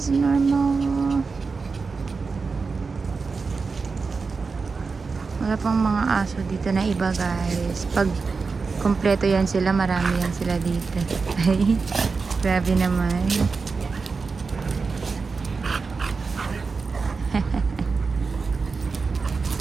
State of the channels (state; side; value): quieter; left; 4.6 dB